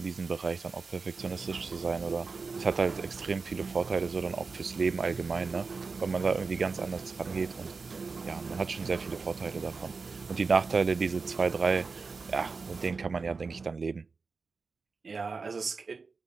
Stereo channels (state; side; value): quieter; left; 4.5 dB